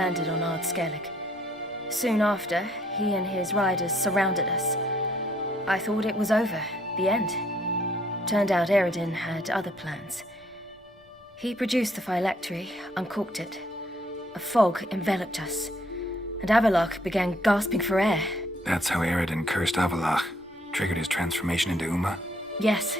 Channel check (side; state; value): both; normal; correlation 0.66